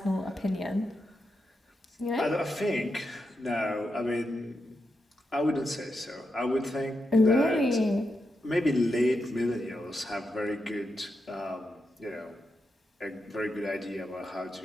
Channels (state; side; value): normal; both; correlation 0.86